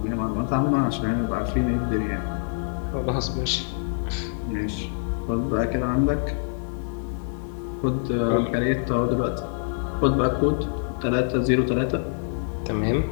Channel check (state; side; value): silent; right; digital silence